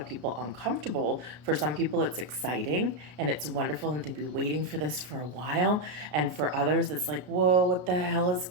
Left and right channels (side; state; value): left; late; 33 ms